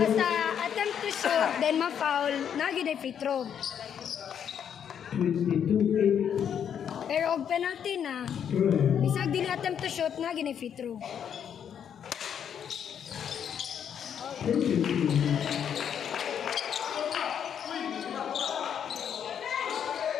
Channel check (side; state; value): right; quieter; 8.5 dB